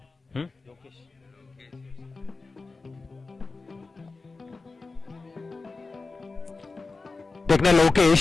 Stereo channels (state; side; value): quieter; right; 3.8 dB